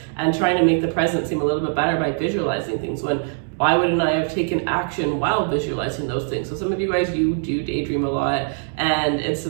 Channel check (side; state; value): left; silent; digital silence